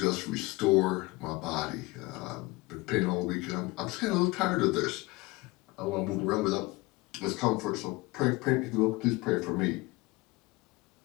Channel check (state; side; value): quieter; right; 22.7 dB